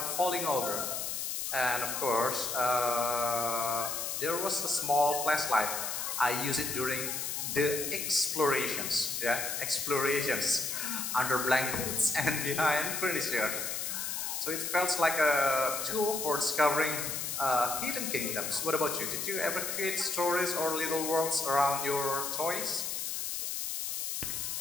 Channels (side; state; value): left; noise; hiss, 3 dB below the sound